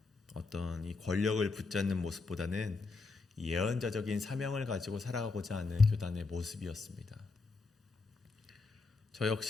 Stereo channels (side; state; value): right; quieter; 3.9 dB